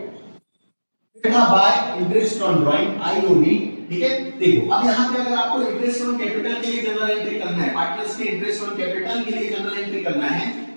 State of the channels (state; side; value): inverted; both; correlation -1.00